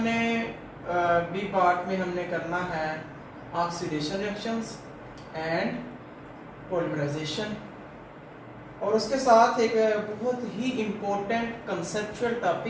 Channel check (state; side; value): identical; both; correlation 1.00